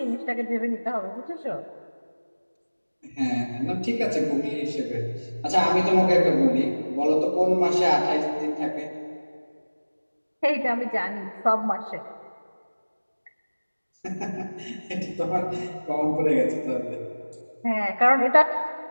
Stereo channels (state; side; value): inverted; both; correlation -1.00